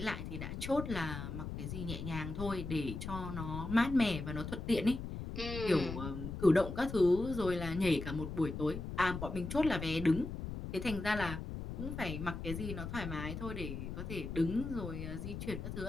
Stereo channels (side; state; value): left; noise; rumble, 6 dB below the sound